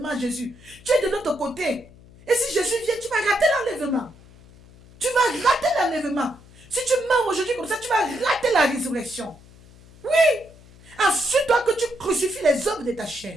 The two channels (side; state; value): left; noise; hum, 23 dB below the sound